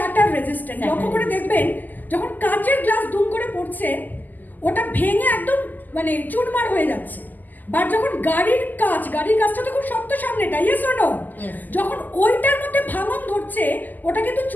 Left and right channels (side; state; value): right; late; 0.085 ms